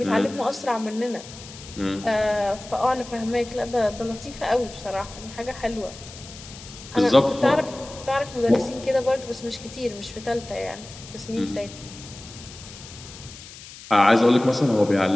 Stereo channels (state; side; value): noise; left; hiss, 16 dB below the sound